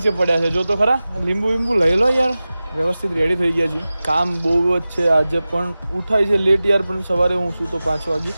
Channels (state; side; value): inverted; both; correlation -0.96